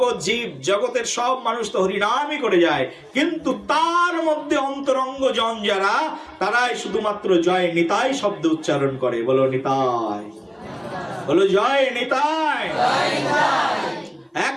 জীব জগতের সব মানুষ তো হরিনামই করে যায়, কিন্তু তার মধ্যে অন্তরঙ্গ জন যারা, তারাই শুধুমাত্র জয় নিতাই শব্দ উচ্চারণ করে। বলো নিতাই, বলো জয় নিতাই।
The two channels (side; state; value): both; identical; correlation 1.00